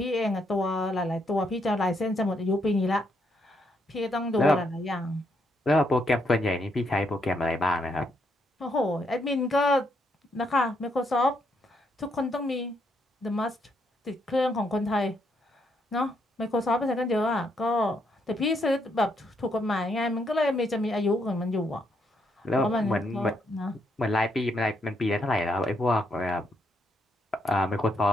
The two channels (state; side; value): normal; both; correlation 0.76